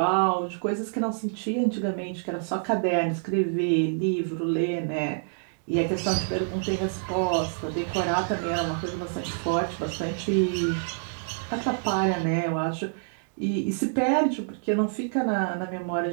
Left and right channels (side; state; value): left; silent; digital silence